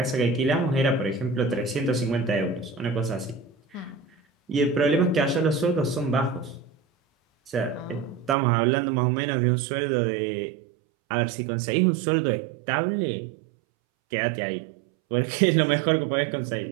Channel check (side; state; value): left; drops out; at 8.3 s